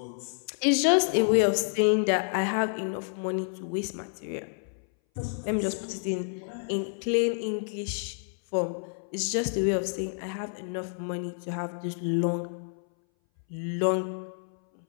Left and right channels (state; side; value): silent; right; 59 dB below the other